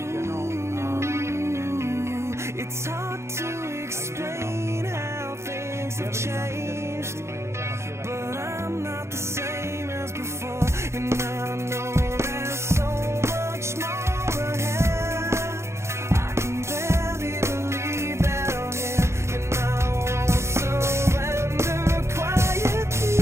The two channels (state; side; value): late; left; 0.13 ms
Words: it's hard to explain how things have changed, but I'm not the same as before, and I know there's so much more ahead. I can barely believe that I'm here, and I won't surrender